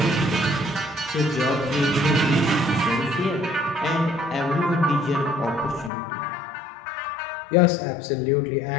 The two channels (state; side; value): drops out; right; at 5.9 s